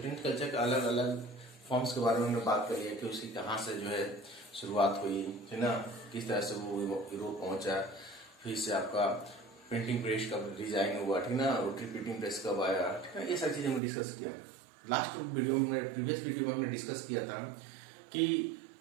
culture के अलग अलग फॉर्म्स के बारे में हमने बात करी है कि उसकी कहाँ से जो है शुरुआत हुई, है ना, किस तरह से वो यूरोप पहुंचा, फिर से आपका प्रिंटिंग प्रेस का डिजाइन हुआ, ठीक ना, रोटरी प्रिंटिंग प्रेस कब आया, ठीक है, ये सारी चीजें हमने डिस्कस किया। लास्ट वीडियो में, प्रीवियस वीडियो में हमने डिस्कस किया था कि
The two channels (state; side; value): drops out; left; at 13.8 s